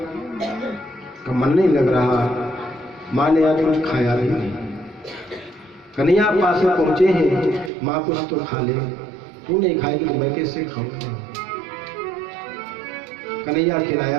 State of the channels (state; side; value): drops out; left; at 7.7 s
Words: का मन नहीं लग रहा, माँ ने आज कुछ खाया नहीं। कन्हैया पास में पहुंचे हैं, माँ कुछ तो खा ले, तू नहीं खाएगी तो मैं कैसे खाऊंगा। कन्हैया खिलाया